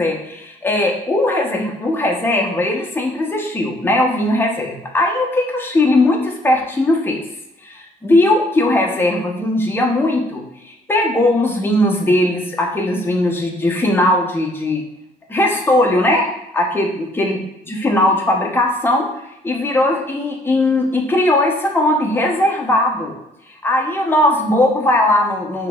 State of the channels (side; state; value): both; normal; correlation 0.62